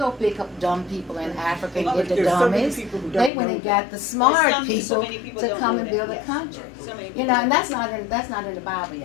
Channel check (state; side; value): drops out; right; at 3.3 s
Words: pick up dumb people in Africa and get the There's so many dummies. people who don't They went know and that. got the smart so people many people to don't come know and that, build a yes. country. So many You people know, don't and know. that's not in the Bible,